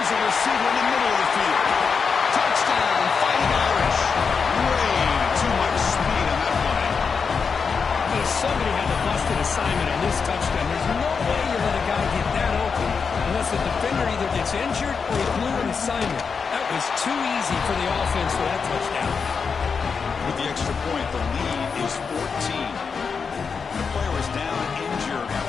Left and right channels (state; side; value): quieter; right; 5.6 dB